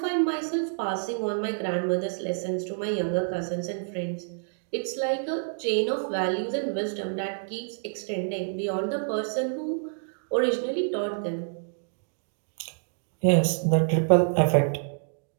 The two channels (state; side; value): silent; left; digital silence